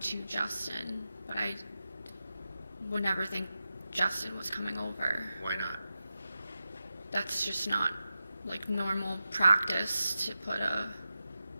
Justin, but I would never think Justin was coming over. Why not? That's just not like normal practice to put a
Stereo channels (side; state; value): both; inverted; correlation -0.92